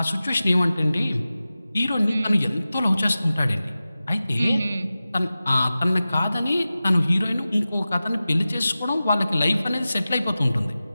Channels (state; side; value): inverted; both; correlation -0.95